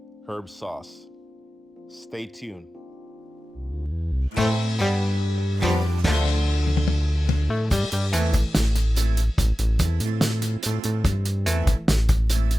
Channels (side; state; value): both; normal; correlation 0.95